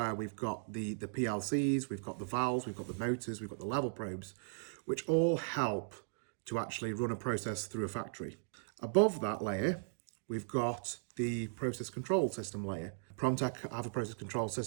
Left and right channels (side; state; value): left; silent; digital silence